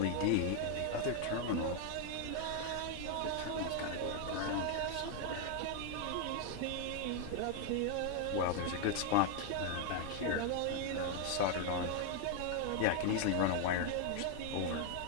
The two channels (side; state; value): both; different; correlation 0.01